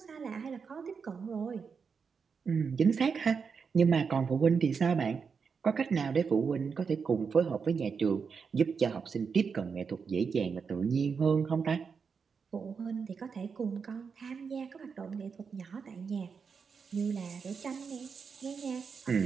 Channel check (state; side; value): quieter; left; 5.8 dB